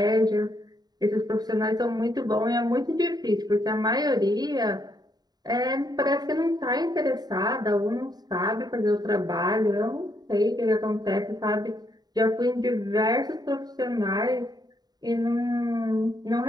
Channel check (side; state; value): left; late; 0.19 ms